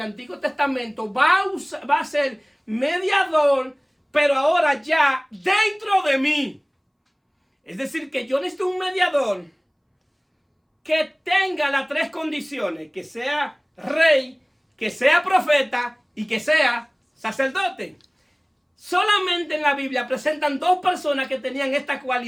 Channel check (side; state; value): both; identical; correlation 1.00